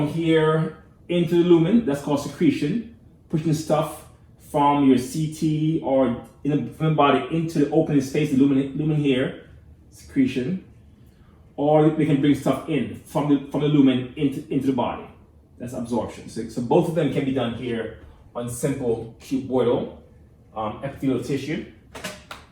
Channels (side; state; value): both; identical; correlation 1.00